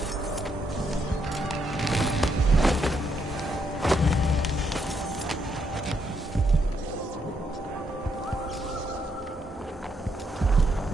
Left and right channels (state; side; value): normal; both; correlation 0.76